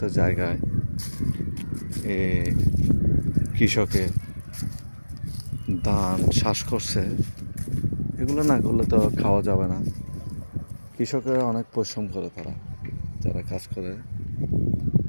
জায়গায় কৃষকে ধান চাষ করছে। এগুলো না করলে তো খাওয়া যাবে না। কৃষকেরা অনেক পরিশ্রম করে, যারা কাজ করে।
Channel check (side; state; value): both; inverted; correlation -1.00